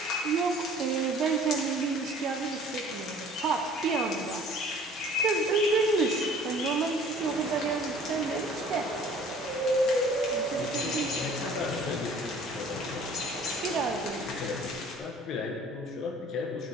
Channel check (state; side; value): normal; both; correlation 0.51